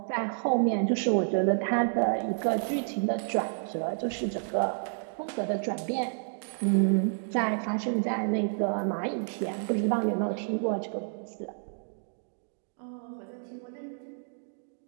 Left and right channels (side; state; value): left; silent; digital silence